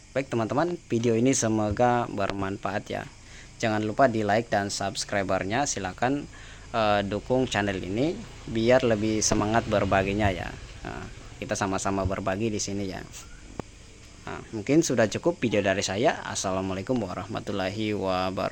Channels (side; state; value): both; identical; correlation 1.00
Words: Baik teman-teman, video ini semoga bermanfaat ya. Jangan lupa di like dan subscribernya, silahkan dukung channel ini biar lebih semangat berbaginya ya. Nah, kita sama-sama berbagi di sini ya. Nah, mungkin sudah cukup video dari saya. Assalamualaikum warahmatullahi